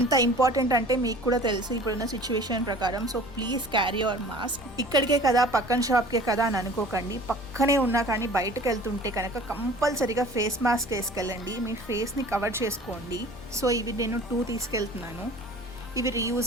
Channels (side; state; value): left; noise; rumble, 19 dB below the sound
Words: ఇంపార్టెంట్ అంటే మీకు కూడా తెలుసు ఇప్పుడున్న సిచ్యువేషన్ ప్రకారం. So please carry your mask. ఇక్కడికే కదా, పక్కన షాప్కే కదా అని అనుకోకండి, పక్కనే ఉన్నా కానీ బయటకు వెళ్తుంటే కనుక కంపల్సరీగా ఫేస్ మాస్క్ వేసుకెళ్ళండి, మీ ఫేస్ని కవర్ చేసుకోండి. సో ఇవి నేను 2 తీసుకెళ్తున్నాను, ఇవి